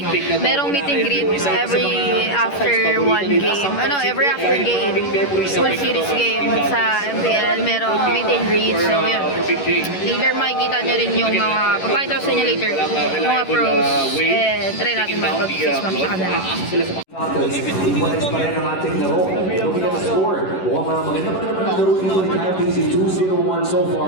merong meet and greet every after one game. Every after game. Full series game sa MPL, merong meet and greet. So, yun. Later, makikita nyo rin yung mga, papakita ko sa inyo later, yung mga pros. And try natin makipag-face map sa kanila. Iwalis pa rin ang ating laro. Looking at the score. Mukhang maganda pa naman ang laro dito ni Kyle Casey. 2-0-1 so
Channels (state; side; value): late; right; 11 ms